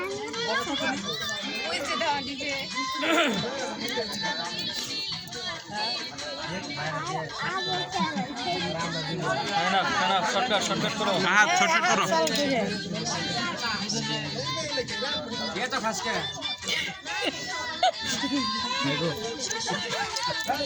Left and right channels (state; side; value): identical; both; correlation 1.00